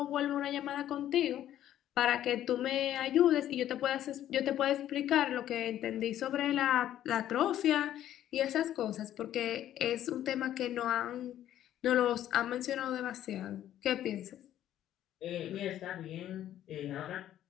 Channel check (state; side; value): quieter; right; 11.9 dB